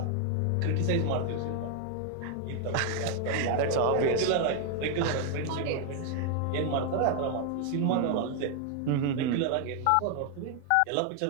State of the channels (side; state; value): both; different; correlation 0.00